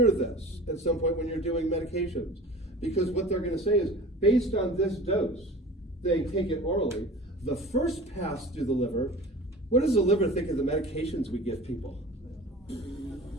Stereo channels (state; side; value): normal; both; correlation 0.39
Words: this at some point when you're doing medications, because what they're going to say is, based on this dose, they take it orally, the first pass through the liver, what does the liver think of the medications we give people?